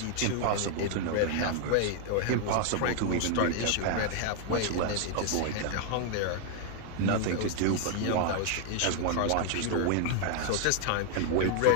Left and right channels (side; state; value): both; different; correlation 0.00